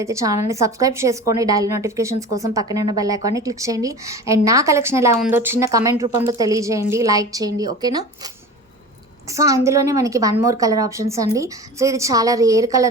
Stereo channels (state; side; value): normal; both; correlation 0.35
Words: ఛానల్ని సబ్స్క్రైబ్ చేసుకోండి. డైలీ నోటిఫికేషన్స్ కోసం పక్కనే ఉన్న బెల్ ఐకాన్ని క్లిక్ చేయండి. అండ్ నా కలెక్షన్ ఎలా ఉందో చిన్న కమెంట్ రూపంలో తెలియజేయండి, లైక్ చేయండి. ఓకేనా? సో అందులోనే మనకి వన్ మోర్ కలర్ ఆప్షన్స్ అండి. సో ఇది చాలా రేర్